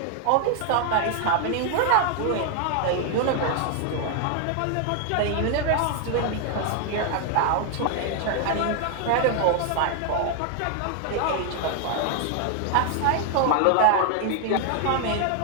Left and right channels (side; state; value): both; different; correlation 0.00